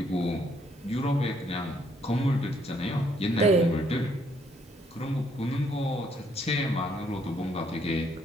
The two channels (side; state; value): both; normal; correlation 0.69